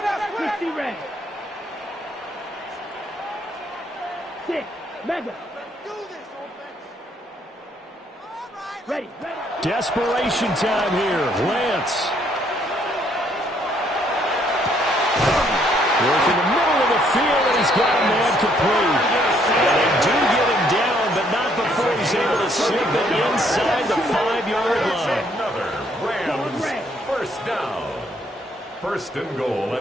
6, mega. Ready. Desperation time here. Lance. Work in the middle of the field, and he's got a man complete. And they do get him down, but not before he's able to slip it inside the 5-yard line. Another Rams first down. First and goal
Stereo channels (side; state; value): both; normal; correlation 0.68